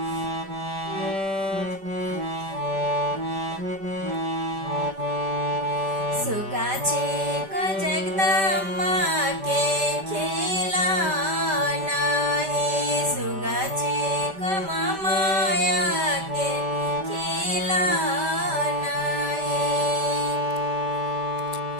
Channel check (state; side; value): late; left; 5.1 ms